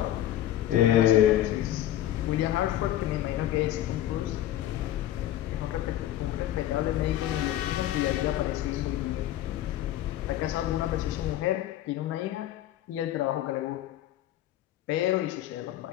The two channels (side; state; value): right; quieter; 12.8 dB